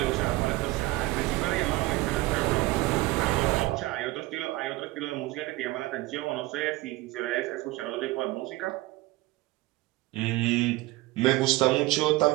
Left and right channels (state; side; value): quieter; left; 19.5 dB